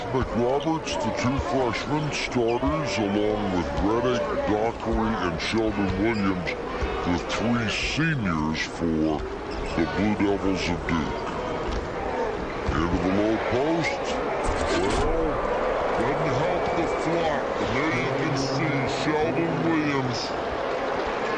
McRoberts, the 2 freshmen starters, along with Redick, Dockery, and Sheldon Williams, the 3 seniors for the Blue Devils of Duke. Into the low post. Well, doesn't help the flock. And there you can see Sheldon Williams,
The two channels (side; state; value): both; identical; correlation 1.00